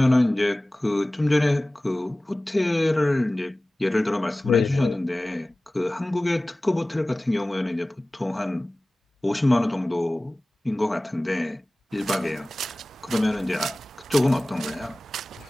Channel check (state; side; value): normal; both; correlation 0.98